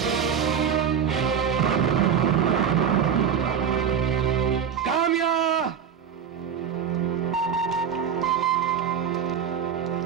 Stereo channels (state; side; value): quieter; left; 7.8 dB